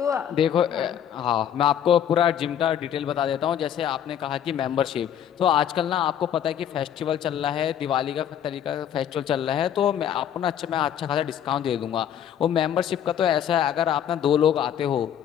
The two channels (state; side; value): quieter; right; 9.6 dB